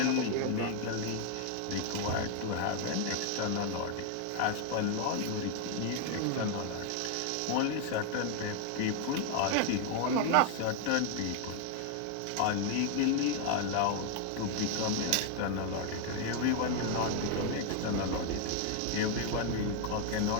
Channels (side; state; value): both; different; correlation 0.01